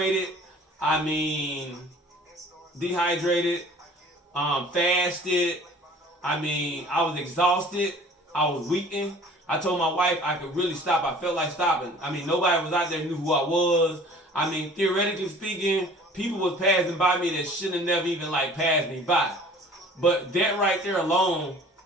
fasted, I was exhausted, I was weakened. I told my wife I could really stop. I felt like stopping. I mean, nobody was out there who knew who I was. I mean, theoretically speaking, people was passing by me that shouldn't have never even passed me by. But that right there alone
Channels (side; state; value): both; normal; correlation 0.48